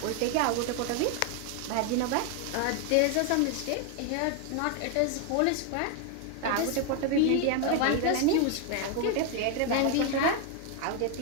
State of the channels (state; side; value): different; both; correlation 0.01